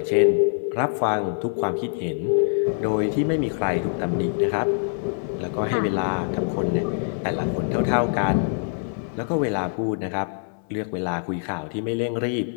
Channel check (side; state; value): right; silent; 60 dB below the other